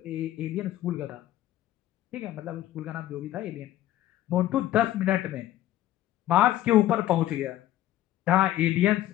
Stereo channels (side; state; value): right; quieter; 13.7 dB